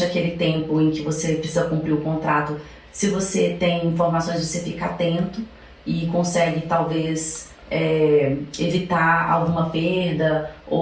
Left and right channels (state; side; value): identical; both; correlation 1.00